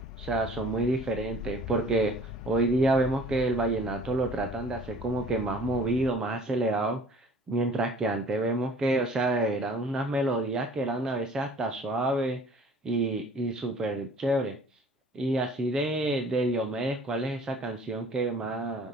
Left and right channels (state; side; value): normal; both; correlation 0.50